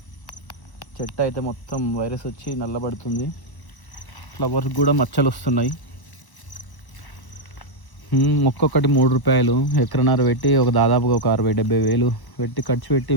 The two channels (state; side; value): late; right; 1.0 ms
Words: చెట్టు అయితే మొత్తం వైరస్ వచ్చి నల్లబడుతుంది. ఫ్లవర్స్ కూడా మచ్చలు వస్తున్నాయి. ఒక్కొక్కటి 3 రూపాయలు ఎకరన్నర పెట్టి దాదాపుగా ఒక 60-70 వేలు పెట్టి ఖర్చు పెట్టి